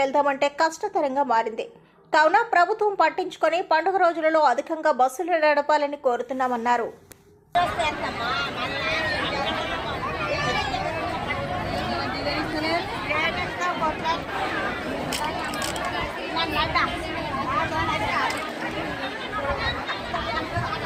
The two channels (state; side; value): identical; both; correlation 1.00